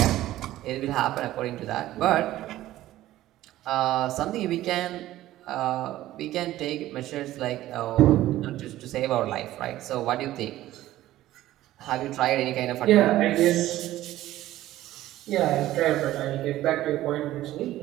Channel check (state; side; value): quieter; left; 14.8 dB